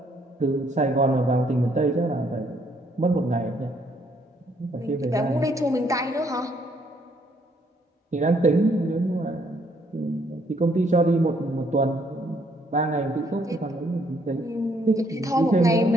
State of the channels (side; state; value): both; normal; correlation 0.68